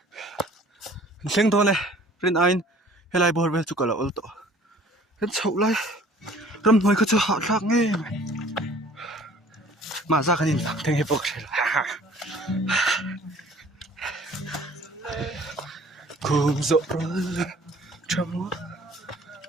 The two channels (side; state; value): both; normal; correlation 0.52